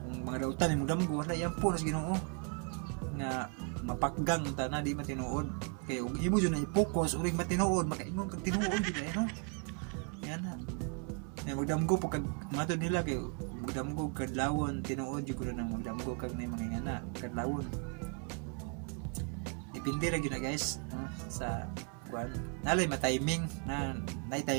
mga dautan mo damgo na iampo na sa Ginoo nga mapakgang ta na di matinuod kay ug imo jud na i-focus uring matinuod makaingon kag tinuod di ba no yan na magdamgo po kag matud nila kay magdamgo kadlawon tinuod jud ko na magdamgo kag may mga ngana kadlawon depende ra gyud na guys no? Sa kuan nalay ma-timing na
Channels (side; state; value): left; quieter; 37.7 dB